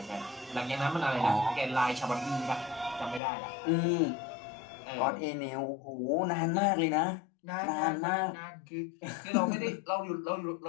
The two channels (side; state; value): right; drops out; at 3.2 s